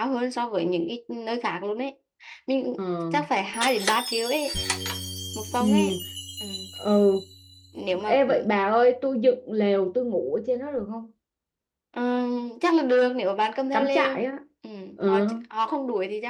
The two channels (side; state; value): both; identical; correlation 1.00